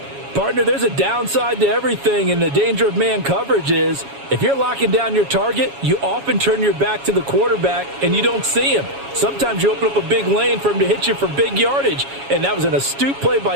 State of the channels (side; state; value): left; late; 7.2 ms